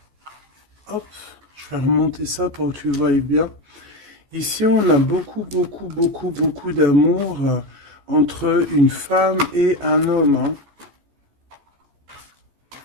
Hop, je vais remonter ça pour que tu vois bien. Ici, on a beaucoup d'amour entre une femme et un homme, hein.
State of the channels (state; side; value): late; left; 14 ms